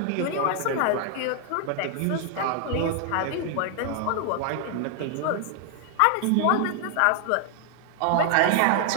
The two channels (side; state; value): both; different; correlation 0.00